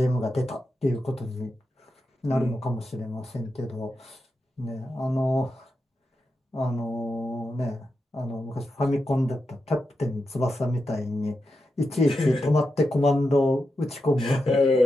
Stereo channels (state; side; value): normal; both; correlation 0.88